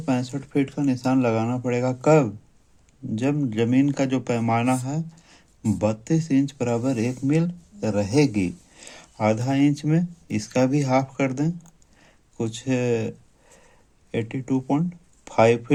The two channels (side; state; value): both; identical; correlation 1.00